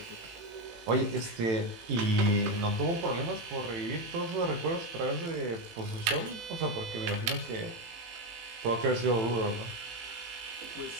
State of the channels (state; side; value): late; left; 18 ms